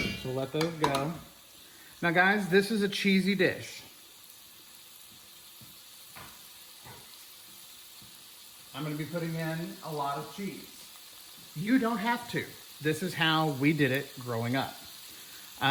So let those go. Now guys, this is a cheesy dish. I'm going to be putting in a lot of cheese. You don't have to. This is how we did it growing up.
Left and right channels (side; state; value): both; identical; correlation 1.00